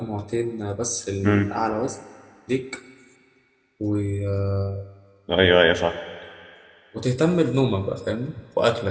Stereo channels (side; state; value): both; identical; correlation 1.00